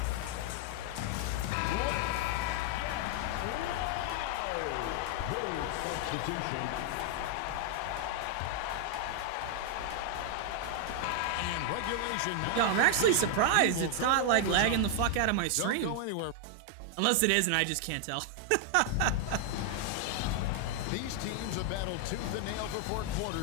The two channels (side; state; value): both; different; correlation 0.00